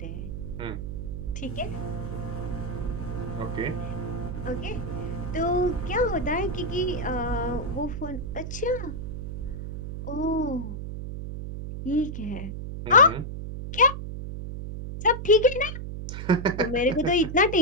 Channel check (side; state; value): right; noise; hum, 6 dB below the sound